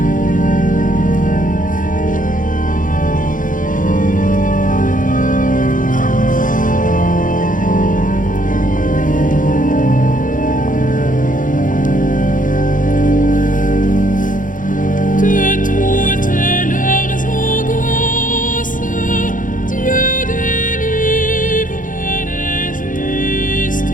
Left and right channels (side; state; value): right; late; 0.38 ms